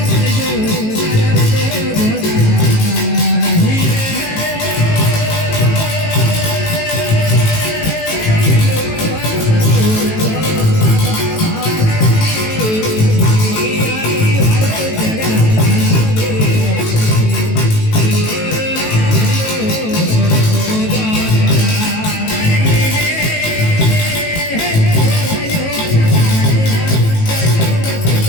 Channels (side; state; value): right; late; 18 ms